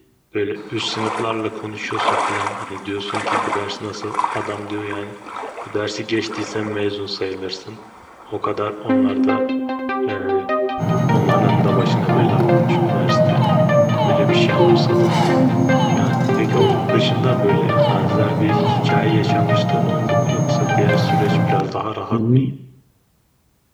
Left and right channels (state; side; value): identical; both; correlation 1.00